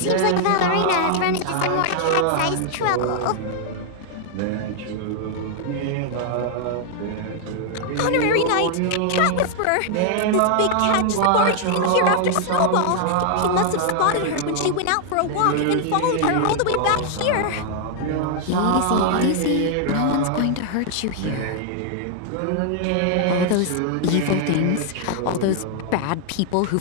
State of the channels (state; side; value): different; both; correlation 0.00